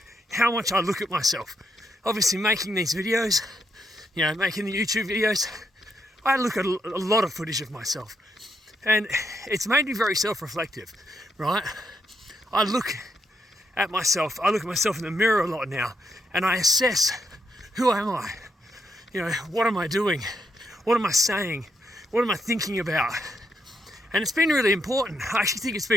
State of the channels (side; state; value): both; normal; correlation 0.77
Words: how much I look at myself. Obviously making these videos, you know, making the YouTube videos, I look at a lot of footage of myself and it's made me very self-reflective, right? I look at myself in the mirror a lot now and I assess, who am I? You know, what am I doing? What am I saying? What am I thinking about? And it's been really important. I actually think it's